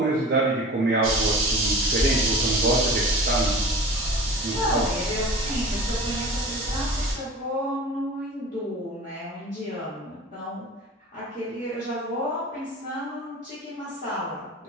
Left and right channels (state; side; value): normal; both; correlation 0.38